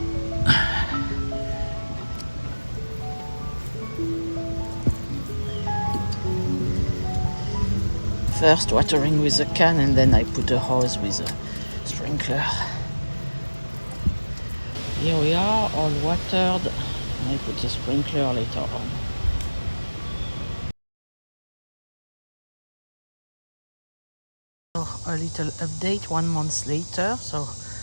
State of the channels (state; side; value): inverted; both; correlation -1.00